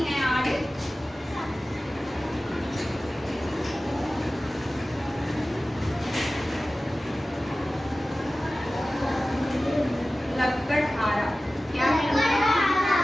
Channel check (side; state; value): both; normal; correlation 0.96